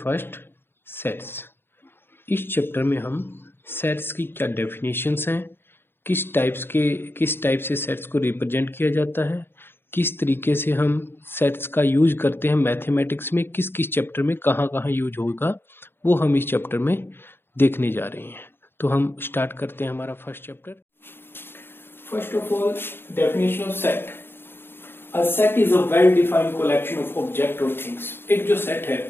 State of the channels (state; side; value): late; right; 0.11 ms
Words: first sets। इस chapter में हम sets की क्या definitions हैं, किस type से सेट्स को रिप्रेजेंट किया जाता है, किस तरीके से हम सेट्स का यूज करते हैं मैथमेटिक्स में, किस किस चैप्टर में कहाँ कहाँ यूज होगा, वो हम इस चैप्टर में देखने जा रहे हैं। तो हम स्टार्ट करते हैं हमारा first chapter. First of all, definition of set. A set is a well defined collection of object और थिंग्स। एक जो सेट है